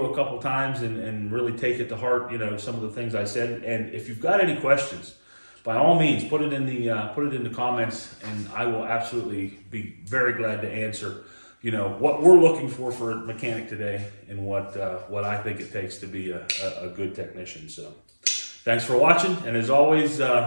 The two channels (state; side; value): inverted; both; correlation -1.00